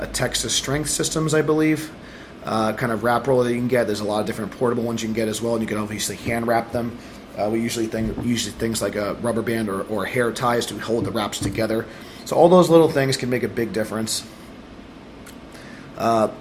Texas Strength Systems, I believe, kind of wrap roll that you can get. There's a lot of different portable ones you can get as well, and you can obviously hand wrap them. We usually things like a rubber band or hair ties to hold the wraps together. So all those little things can make a big difference.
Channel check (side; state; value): both; identical; correlation 1.00